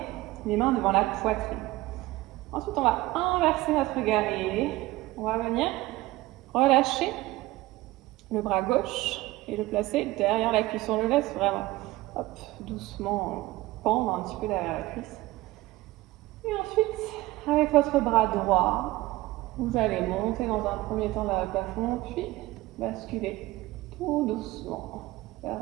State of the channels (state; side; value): quieter; left; 18.5 dB